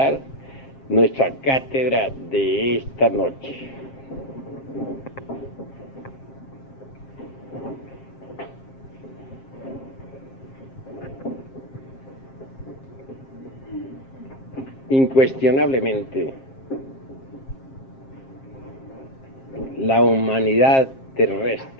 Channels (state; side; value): late; right; 7.5 ms